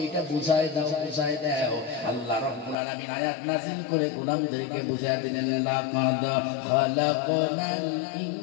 এটা বুঝায় দাও, বুঝায় দাও। আল্লাহ রাব্বুল আলামিন আয়াত নাযিল করে গোলামদেরকে বুঝায় দিলেন লাকাদ খালাকনাল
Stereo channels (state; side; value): drops out; right; at 2.8 s